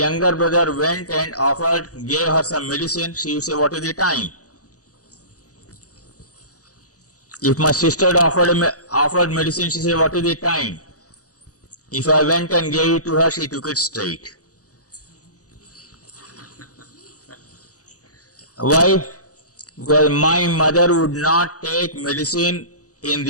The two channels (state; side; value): late; right; 0.67 ms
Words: brother went and gave her some medicine, she would say, what is the time? If my sister offered medicine, she said, what is the time? If I went and gave it to her, she took it straight. Why? Because my mother would not take medicine in